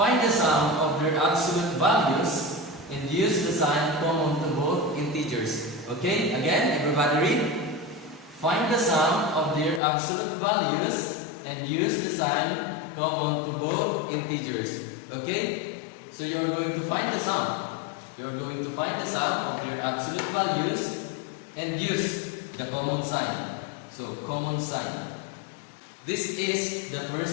the sum of their absolute values and use the sign common to both integers. Okay, again, everybody read. Find the sum of their absolute values and use the sign common to both integers. Okay, so you are going to find the sum. You are going to find the sum of their absolute values and use the common sign. So, common sign. This is the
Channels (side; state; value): right; drops out; at 9.8 s